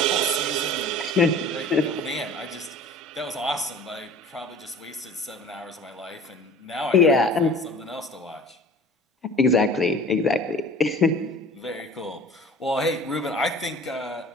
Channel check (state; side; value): normal; both; correlation 0.44